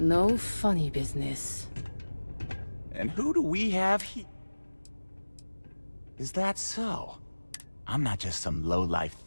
funny business. And who do we have here? Is that so? I'm not just some low-life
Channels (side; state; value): both; inverted; correlation -1.00